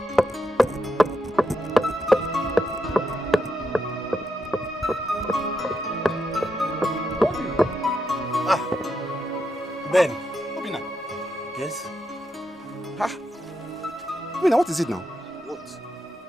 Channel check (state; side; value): normal; both; correlation 0.83